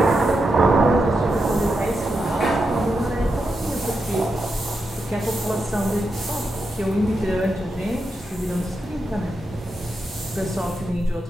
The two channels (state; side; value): normal; both; correlation 0.86